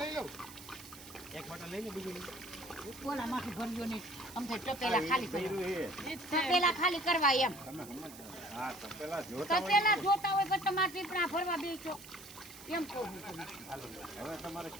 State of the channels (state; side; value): noise; right; hiss, 16 dB below the sound